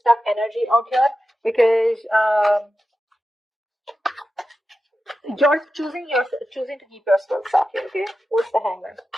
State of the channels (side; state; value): both; normal; correlation 0.91